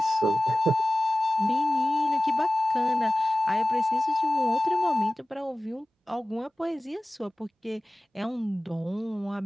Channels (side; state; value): both; normal; correlation 0.97